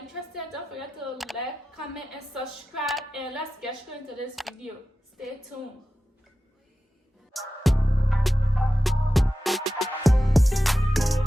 don't forget to like, comment, and subscribe. And let's get straight into this video. Stay tuned.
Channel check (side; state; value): both; normal; correlation 0.93